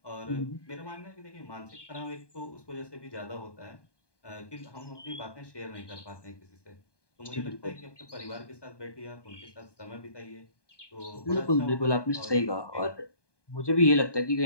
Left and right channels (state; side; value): late; right; 1.2 ms